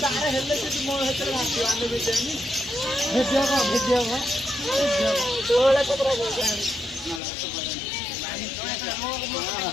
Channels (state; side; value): drops out; right; at 7.2 s